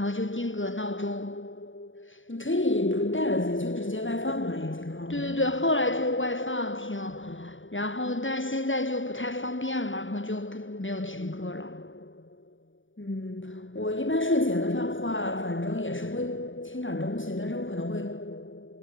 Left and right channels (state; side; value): late; right; 0.57 ms